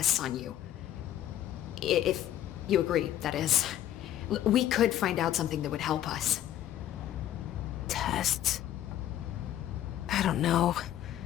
on you. If you agree, that is. We could find out something that would help us. Tests? I don't know.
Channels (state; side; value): quieter; right; 12.0 dB